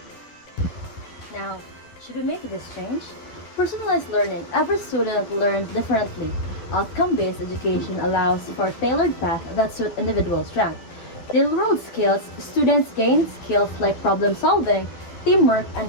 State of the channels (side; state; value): right; late; 11 ms